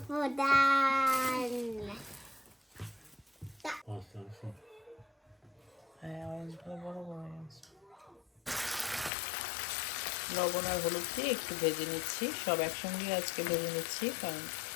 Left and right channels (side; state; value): right; drops out; at 9.1 s